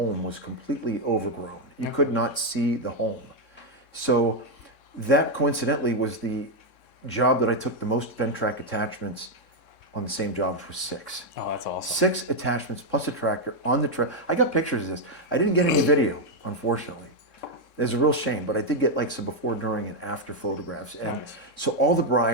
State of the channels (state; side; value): late; right; 3.6 ms